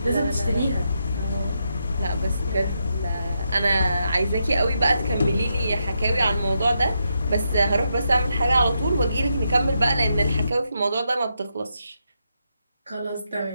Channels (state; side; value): inverted; both; correlation -0.82